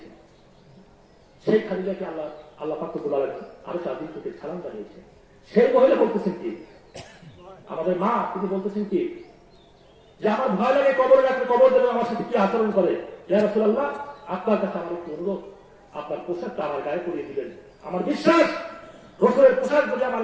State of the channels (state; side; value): identical; both; correlation 1.00